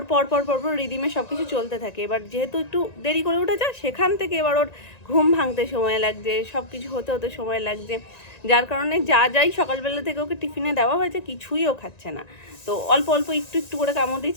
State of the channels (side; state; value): right; late; 1.9 ms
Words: পরপর রিদিমে সব কিছু চলতে থাকে। এবার যেহেতু একটু দেরি করে উঠেছে, সেখান থেকে এবার ওর ঘুম ভাঙতে সময় লাগছে, সব কিছু হতে হতে সময় লাগছে, যার কারণে যাই সকালবেলা থেকে ওকে টিফিনে দেওয়া হয়েছে কিছুই ও খাচ্ছে না। তো অল্প একটু করে কামড়